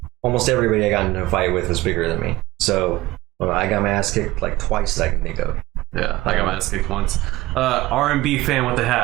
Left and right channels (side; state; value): left; quieter; 18.3 dB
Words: almost everybody I got into a fight with was bigger than me. So I got my ass kicked like twice that I can think of. yeah, I got my ass kicked once. R&B fan with the